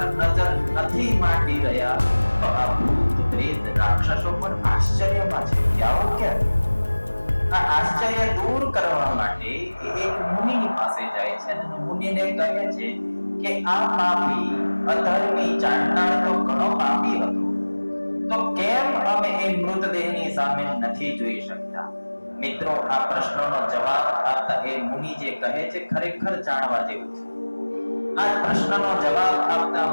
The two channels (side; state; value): both; inverted; correlation -1.00